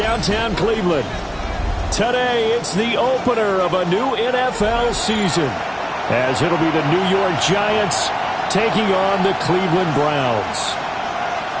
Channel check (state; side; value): identical; both; correlation 1.00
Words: Cleveland. Today, it's the opener of a new NFL season, as it'll be the New York Giants taking on the Cleveland Browns.